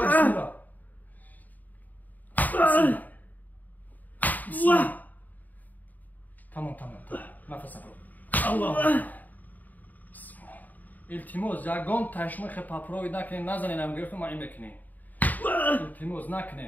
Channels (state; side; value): late; right; 0.082 ms